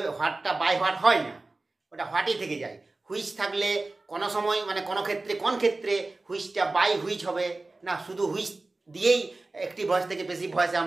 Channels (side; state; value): left; quieter; 3.2 dB